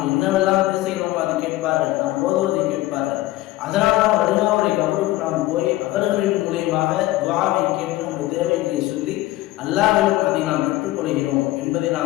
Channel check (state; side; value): quieter; right; 16.9 dB